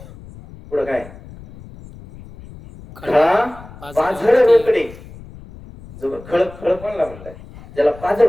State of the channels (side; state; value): left; noise; rumble, 18 dB below the sound